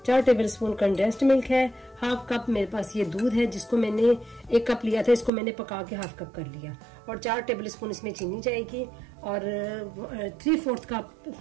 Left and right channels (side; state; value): left; drops out; at 5.3 s